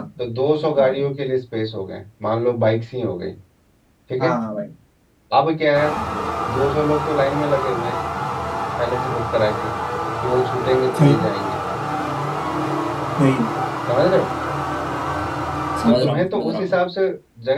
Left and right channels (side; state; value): both; identical; correlation 1.00